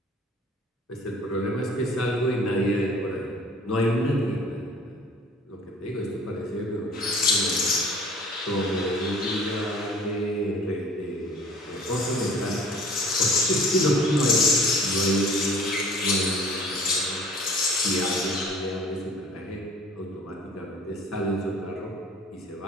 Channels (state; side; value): normal; both; correlation 0.49